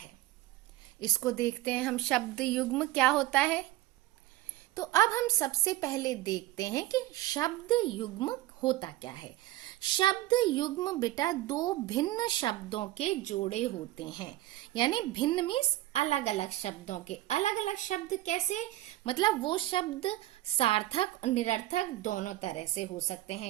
इसको देखते हैं हम। शब्द युग्म क्या होता है, तो अब हम सबसे पहले देखते हैं कि शब्द युग्म होता क्या है। शब्द युग्म बेटा दो भिन्न शब्दों के जोड़े होते हैं, यानी भिन्न मीन्स अलग अलग शब्दों के। अलग अलग शब्द कैसे? मतलब वो शब्द सार्थक और निरर्थक दोनों तरह से हो सकते हैं।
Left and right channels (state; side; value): quieter; left; 16.4 dB